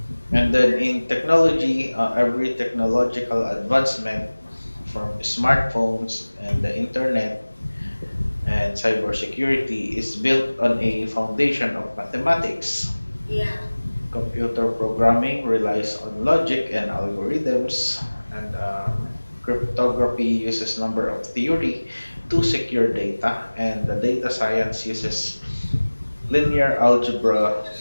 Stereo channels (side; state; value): both; inverted; correlation -1.00